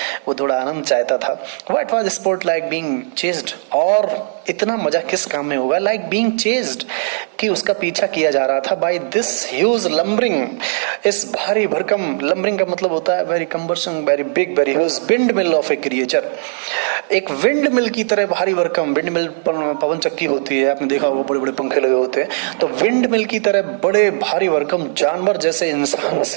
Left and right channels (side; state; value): left; silent; digital silence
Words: वो थोड़ा आनंद चाहता था। What was spot like being chased, और इतना मजा किस काम में होगा, लाइक बीइंग चेस्ड, कि उसका पीछा किया जा रहा था, बाय दिस ह्यूज लंबरिंग, इस भारी भरकम, लंबरिंग का मतलब होता है very cumbersome, very big, very huge wind mill of A creature, एक विंड मिल की तरह भारी भरकम। विंड मिल पवन चक्की होती है, आपने देखा होगा, बड़े बड़े पंखे लगे होते हैं, तो विंड मिल की तरह बड़े भारी भरकम जानवर जैसे इंसान